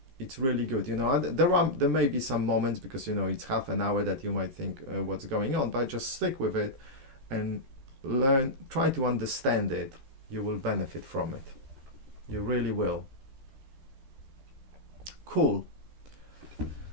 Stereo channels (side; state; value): left; late; 14 ms